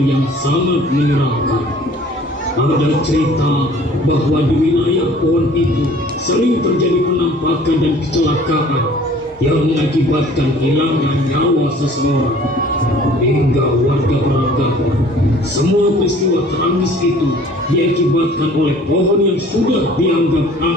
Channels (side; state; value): both; normal; correlation 0.52